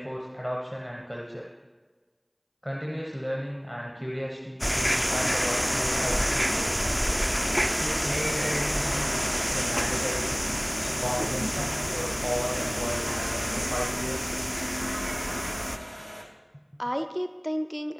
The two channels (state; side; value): identical; both; correlation 1.00